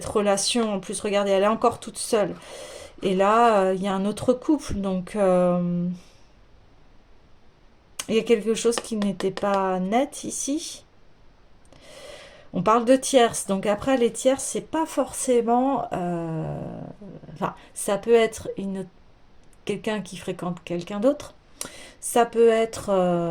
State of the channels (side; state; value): both; identical; correlation 1.00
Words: relation, en plus, regardez, elle est encore toute seule. Et là, il y a un autre couple, donc il y a quelque chose qui n'était pas net ici. On parle de tierces, donc après les tierces, c'est pas forcément... Enfin, ça peut être quelqu'un qui fréquente quelqu'un d'autre. Ça peut être